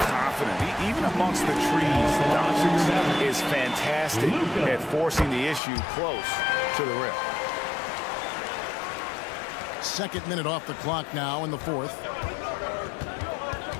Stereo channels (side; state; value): right; drops out; at 5.6 s